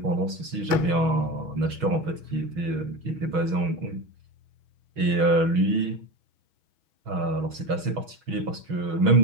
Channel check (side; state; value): left; late; 6.2 ms